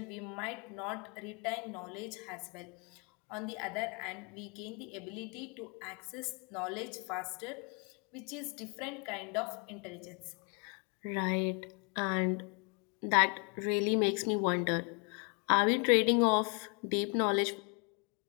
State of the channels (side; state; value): right; quieter; 35.3 dB